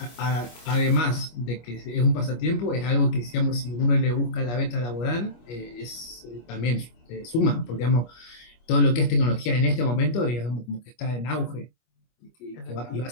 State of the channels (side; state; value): right; late; 25 ms